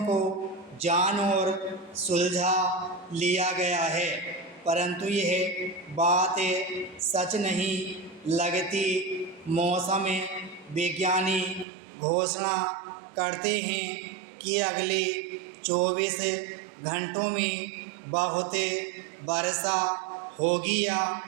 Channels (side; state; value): left; drops out; at 11.7 s